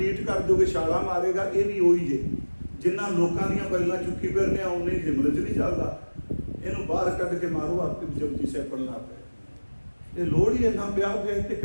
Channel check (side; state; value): both; inverted; correlation -1.00